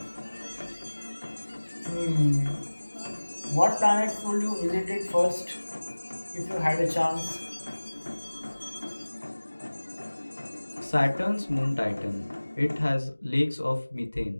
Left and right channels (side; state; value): both; inverted; correlation -1.00